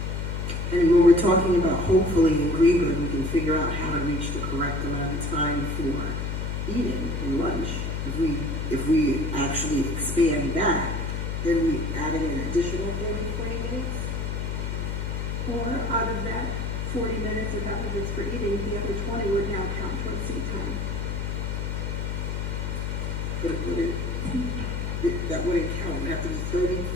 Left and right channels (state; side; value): noise; left; hum, 2 dB below the sound